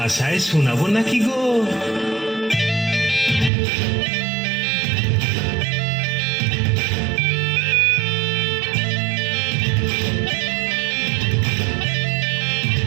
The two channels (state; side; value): drops out; left; at 3.5 s